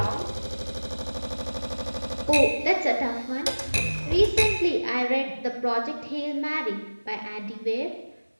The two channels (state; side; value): inverted; both; correlation -1.00